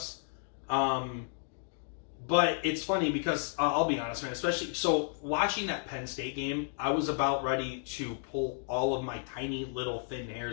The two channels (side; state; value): right; silent; digital silence